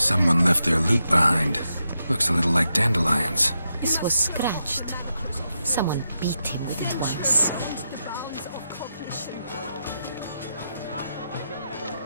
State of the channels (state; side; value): inverted; both; correlation -0.85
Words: left their loot behind. Looks a little like dandelions. This was scratched. Someone beat him with it once.